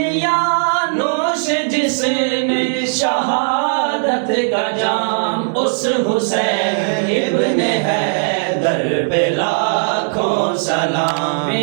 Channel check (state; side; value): silent; left; digital silence